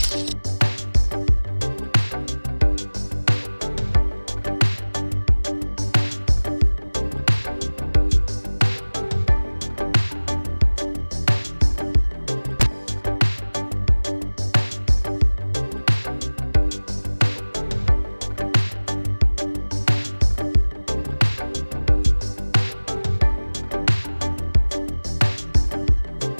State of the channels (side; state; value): both; inverted; correlation -1.00